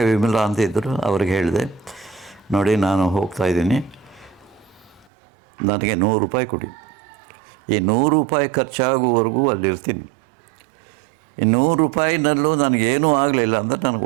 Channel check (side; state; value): left; drops out; at 5.1 s